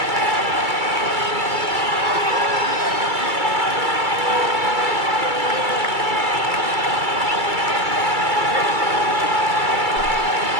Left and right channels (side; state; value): left; late; 2.3 ms